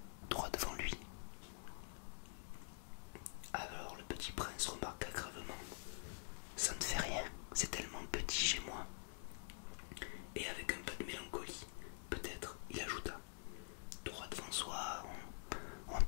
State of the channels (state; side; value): silent; right; digital silence